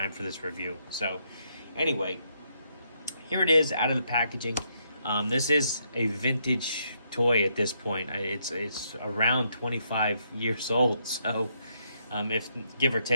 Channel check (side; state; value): both; inverted; correlation -0.76